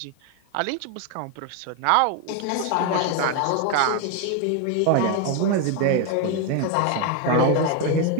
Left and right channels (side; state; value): both; different; correlation 0.01